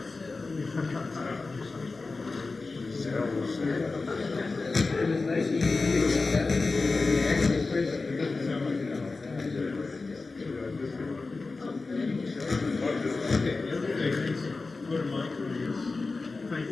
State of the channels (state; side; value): quieter; right; 3.8 dB